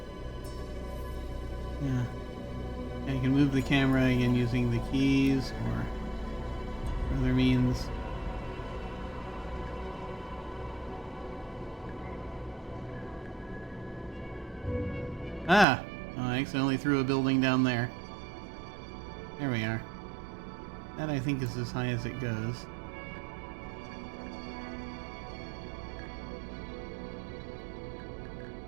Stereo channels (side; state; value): left; drops out; at 15.7 s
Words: Yeah. I can move the camera again using the keys or other means. Ah! Oh, I accidentally threw a building down there. There we are. That, I think, is as high as it goes.